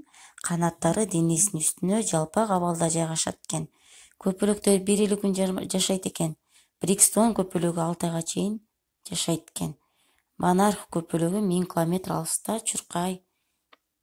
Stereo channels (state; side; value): identical; both; correlation 1.00